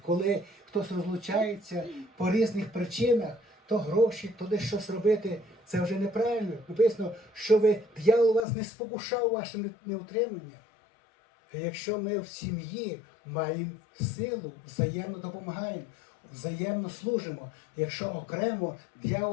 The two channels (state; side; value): drops out; right; at 8.4 s